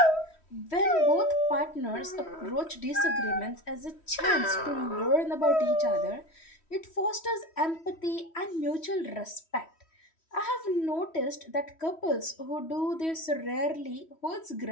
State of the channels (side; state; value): right; late; 3.1 ms